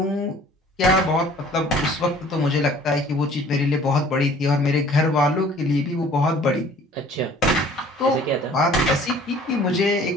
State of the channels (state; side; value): normal; both; correlation 0.52